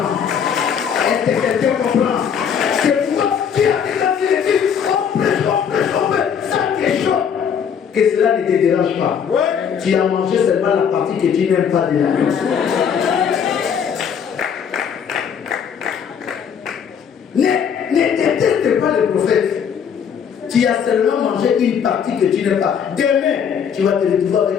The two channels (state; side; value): quieter; right; 7.5 dB